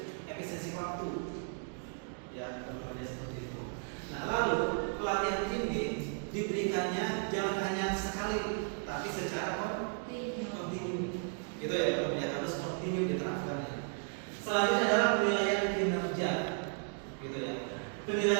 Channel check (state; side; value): silent; left; 55 dB below the other